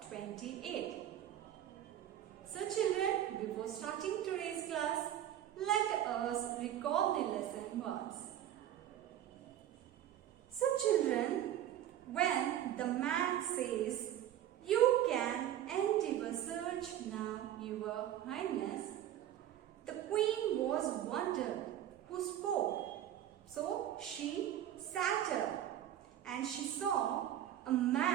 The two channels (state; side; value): quieter; left; 11.6 dB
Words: 28. So children, before starting today's class, let us recall the lesson once. So children, when the man says, "You can end your search now, your highness," the queen was wondered who spoke. So she sat up and she saw a